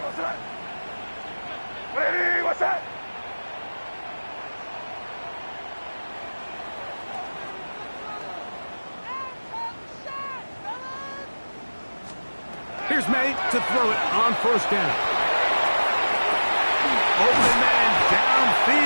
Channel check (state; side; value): inverted; both; correlation -1.00